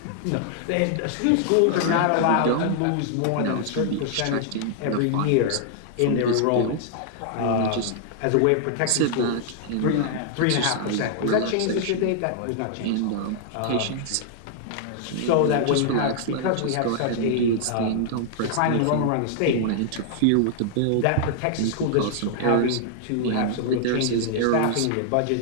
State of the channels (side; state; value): both; different; correlation -0.01